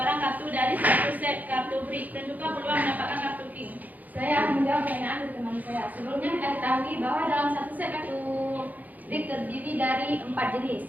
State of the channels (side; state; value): left; late; 0.080 ms